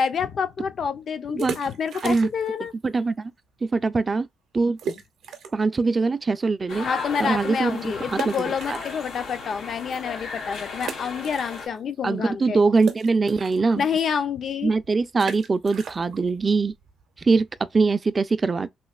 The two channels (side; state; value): both; normal; correlation 0.87